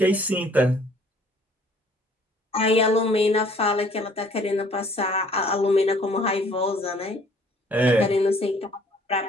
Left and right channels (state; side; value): normal; both; correlation 0.58